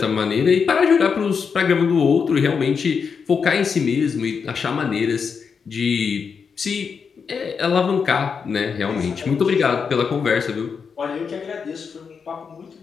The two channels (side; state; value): right; quieter; 6.0 dB